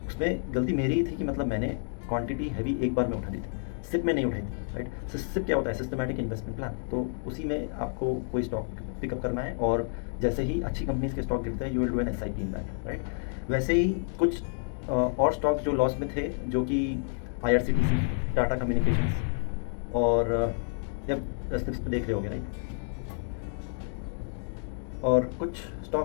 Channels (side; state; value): right; silent; 58 dB below the other